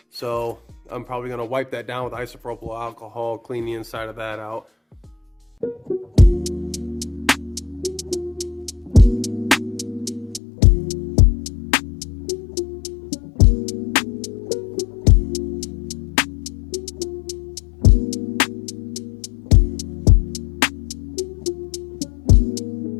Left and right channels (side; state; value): right; drops out; at 10.4 s